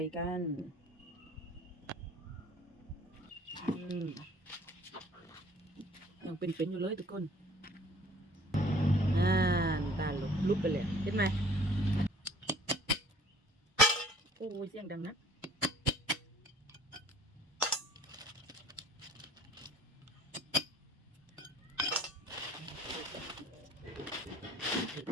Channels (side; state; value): both; normal; correlation 0.53